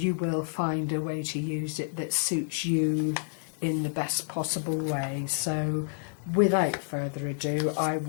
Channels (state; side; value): silent; right; digital silence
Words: will find a way to use it that suits you in the best possible way. So without further ado, I